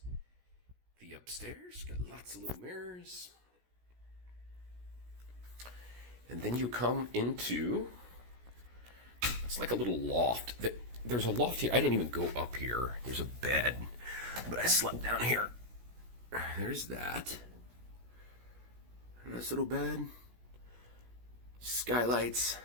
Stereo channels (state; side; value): late; left; 16 ms